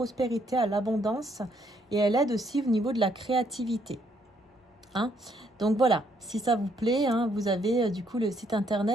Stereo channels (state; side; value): normal; both; correlation 0.70